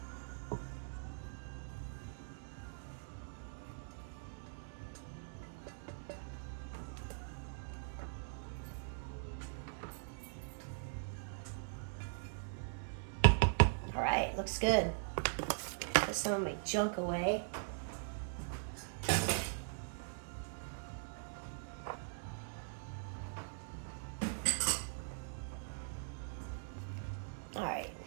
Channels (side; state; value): left; silent; digital silence